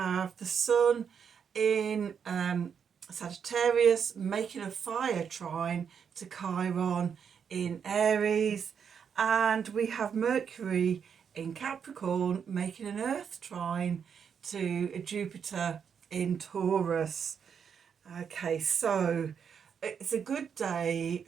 the sun in Sagittarius making a fire trine to Chiron in Aries, and we have Mercury in Capricorn making an earth trine to Jupiter in Taurus. Okay, so it's a good day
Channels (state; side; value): quieter; left; 7.1 dB